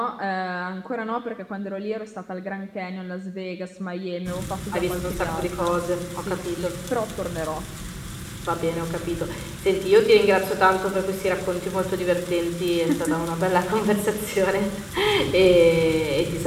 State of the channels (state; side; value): identical; both; correlation 1.00